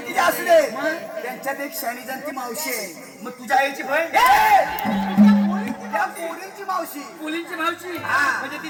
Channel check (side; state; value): both; identical; correlation 1.00